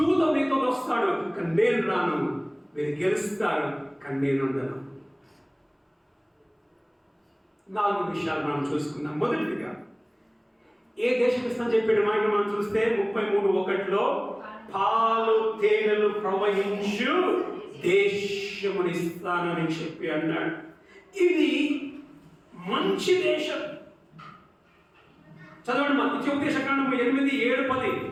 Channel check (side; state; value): both; identical; correlation 1.00